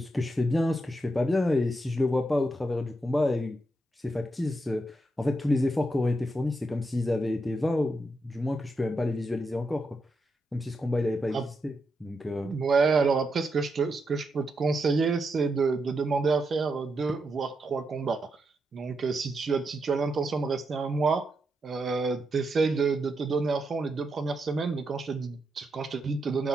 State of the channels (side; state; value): both; normal; correlation 0.84